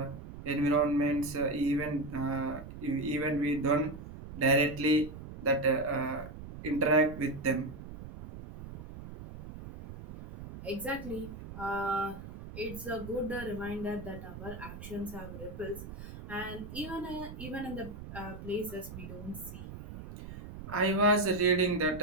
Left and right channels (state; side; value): noise; right; rumble, 12 dB below the sound